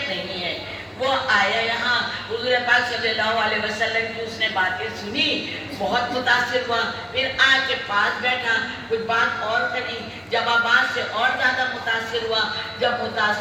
नहीं है। वो आया यहाँ, हुज़ूर पाक सल्लल्लाहु अलैहि वसल्लम की उसने बातें सुनी, बहुत मुतासिर हुआ, फिर आके पास बैठा, कुछ बात और करी, जवाबात से और ज़्यादा मुतासिर हुआ। जब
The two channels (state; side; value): identical; both; correlation 1.00